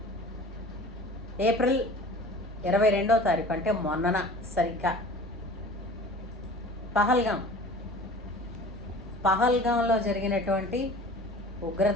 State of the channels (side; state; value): both; normal; correlation 0.42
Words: ఏప్రిల్ 22వ తారీఖు అంటే మొన్నన సరిగ్గా పహల్గాంలో జరిగినటువంటి